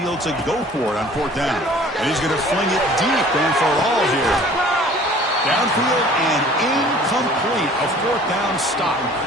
to go for it on 4th down. And he's going to fling it deep and for all here. Downfield and incomplete. A 4th down stop.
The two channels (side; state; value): both; normal; correlation 0.50